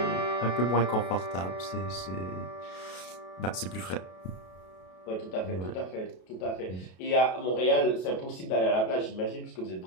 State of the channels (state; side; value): late; right; 32 ms